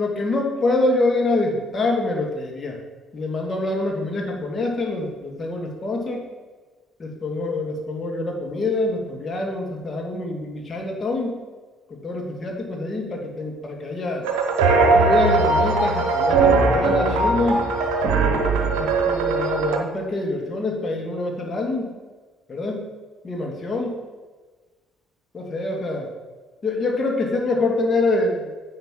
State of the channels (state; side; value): normal; both; correlation 0.58